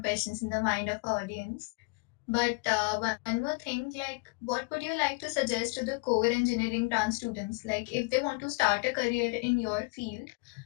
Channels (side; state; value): right; quieter; 30.8 dB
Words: questions in the mind of our audience. But one more thing, like, what would you like to suggest to the core engineering trans students? Like, if they want to start a career in your field,